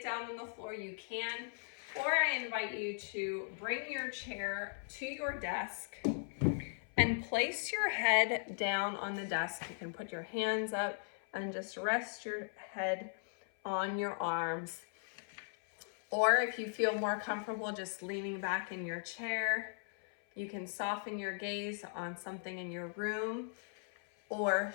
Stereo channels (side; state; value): right; silent; 52 dB below the other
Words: down on the floor, you can. Or I invite you to bring your chair to your desk and place your head down on the desk. You can put your hands up and just rest your head on your arms. Or if you feel more comfortable just leaning back in your chair, you can soften your gaze on something in your room or